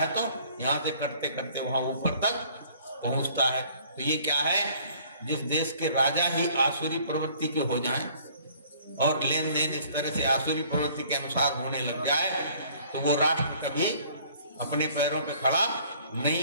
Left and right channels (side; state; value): both; inverted; correlation -0.55